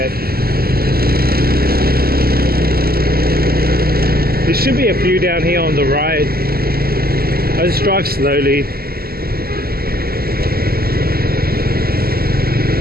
There should be a few down here on the right. I just drive slowly.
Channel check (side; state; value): left; late; 0.45 ms